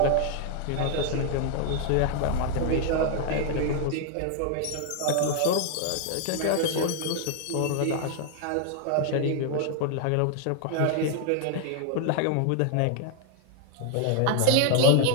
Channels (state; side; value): different; both; correlation 0.00